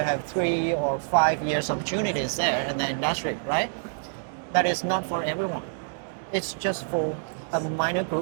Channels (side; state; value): left; silent; digital silence